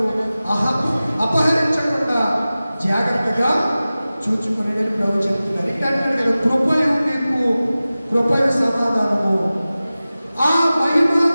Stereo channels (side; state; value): both; inverted; correlation -0.96